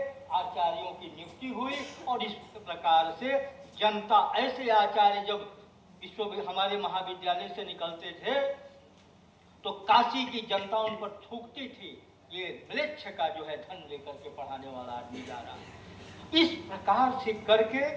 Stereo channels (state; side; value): identical; both; correlation 1.00